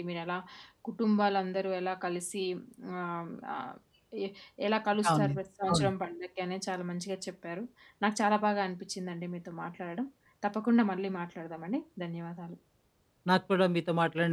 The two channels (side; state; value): both; identical; correlation 1.00